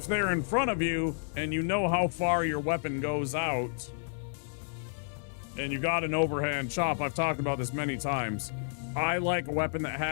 they're in front of you and you know how far your weapon goes out and you got an overhand chop, I've talked about this many times. I like a weapon that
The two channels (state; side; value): silent; right; digital silence